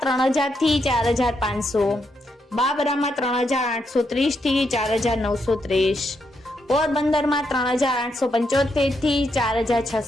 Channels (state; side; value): normal; both; correlation 0.80